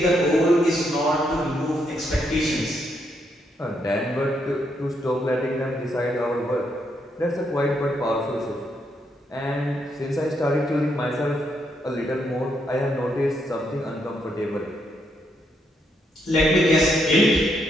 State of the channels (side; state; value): both; normal; correlation 0.77